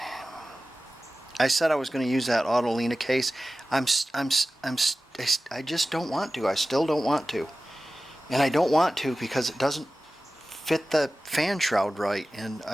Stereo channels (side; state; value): both; normal; correlation 0.96